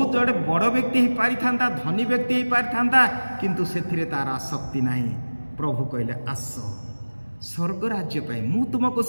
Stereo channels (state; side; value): inverted; both; correlation -1.00